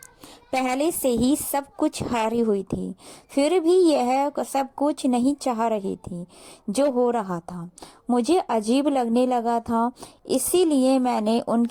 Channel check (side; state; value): both; identical; correlation 1.00